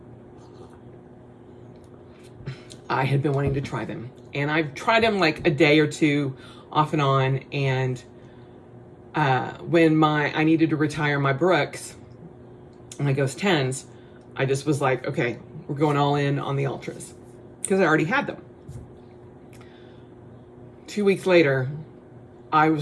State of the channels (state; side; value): identical; both; correlation 1.00